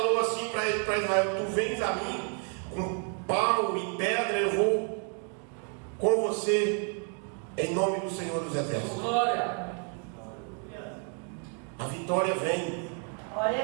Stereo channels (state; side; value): quieter; left; 39.5 dB